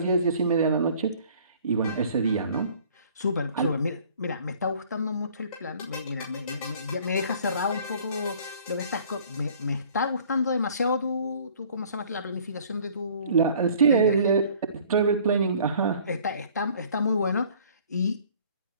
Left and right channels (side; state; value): both; inverted; correlation -0.54